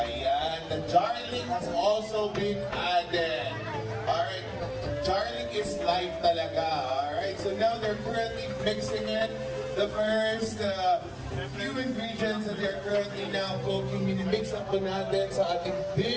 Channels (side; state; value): both; identical; correlation 1.00